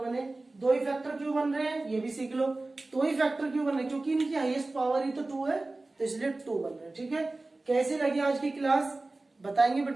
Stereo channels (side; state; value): left; quieter; 3.1 dB